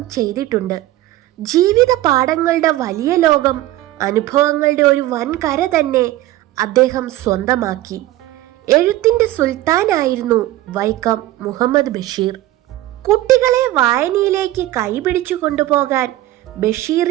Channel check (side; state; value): left; quieter; 15.6 dB